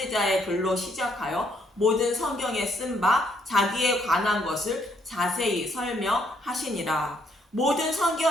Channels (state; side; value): normal; both; correlation 0.70